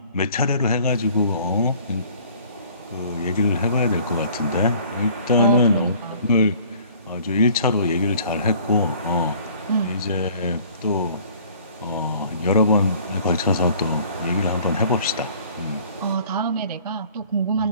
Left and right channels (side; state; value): both; inverted; correlation -0.53